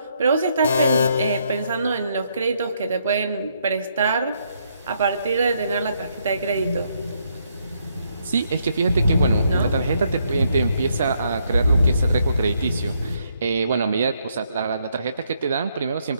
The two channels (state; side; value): inverted; both; correlation -0.74